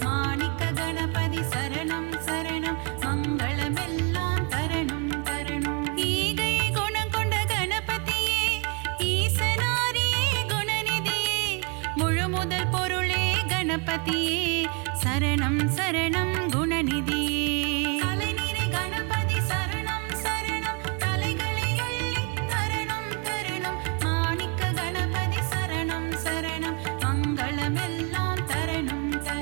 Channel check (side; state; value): left; quieter; 32.8 dB